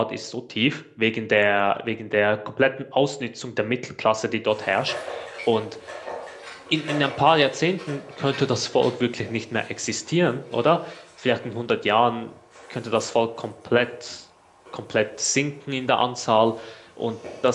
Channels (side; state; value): both; identical; correlation 1.00